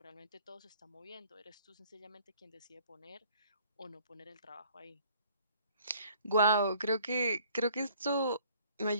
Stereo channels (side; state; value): both; inverted; correlation -0.57